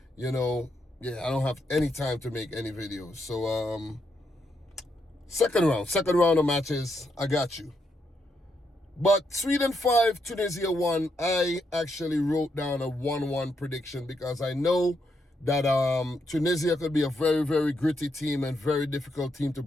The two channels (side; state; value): both; normal; correlation 0.79